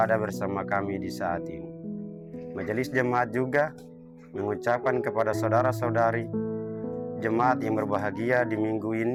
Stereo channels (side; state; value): both; identical; correlation 1.00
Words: bersama kami di saat ini. Majelis Jemaat juga mengucapkan kepada saudara-saudari jemaat yang berbahagia di minggu